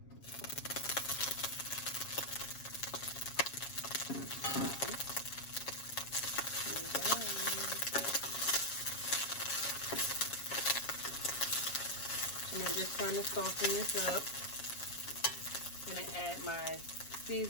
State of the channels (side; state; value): right; late; 7.3 ms